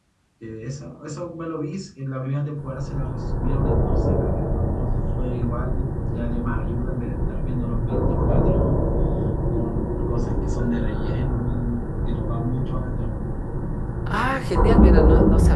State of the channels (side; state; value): both; identical; correlation 1.00